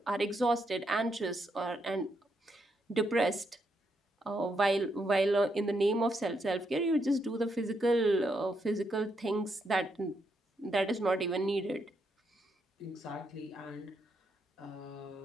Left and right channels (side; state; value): both; normal; correlation 0.79